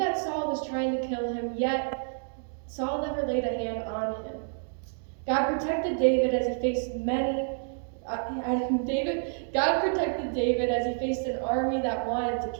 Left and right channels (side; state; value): left; silent; digital silence